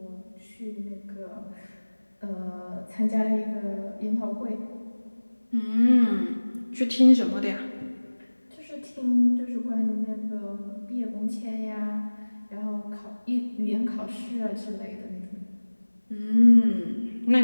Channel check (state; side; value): inverted; both; correlation -1.00